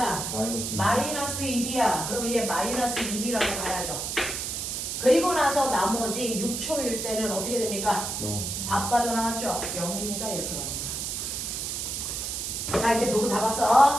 마이너스. 마이너스 2b야. 그럼 얘 마이너스 2b라고 가야죠. 그리고 나서 나머지 6초일 때는 어떻게 됩니까? 0. 다 빠져나왔죠? 0입니다. 이렇게 가는 거야. 자 이제 물고 다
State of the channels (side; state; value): right; noise; hiss, 3 dB below the sound